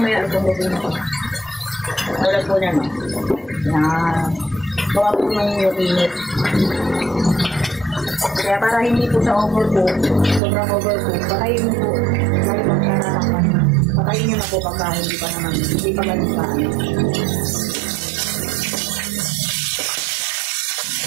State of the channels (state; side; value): drops out; left; at 10.4 s